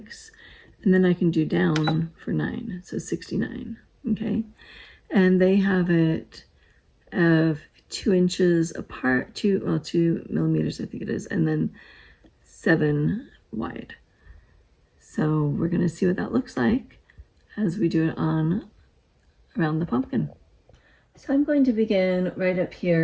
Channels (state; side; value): identical; both; correlation 1.00